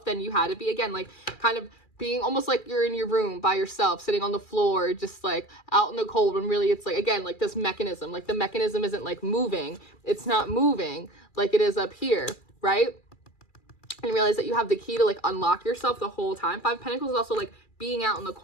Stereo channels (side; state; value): right; late; 2.3 ms